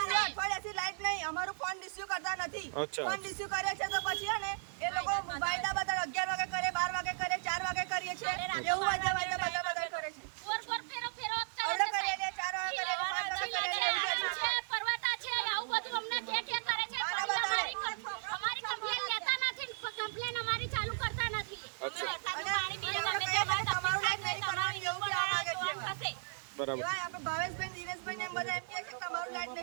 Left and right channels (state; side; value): silent; left; digital silence